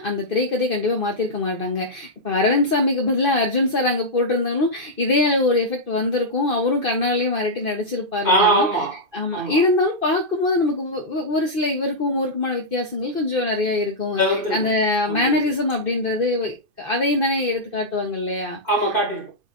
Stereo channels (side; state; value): left; late; 2.5 ms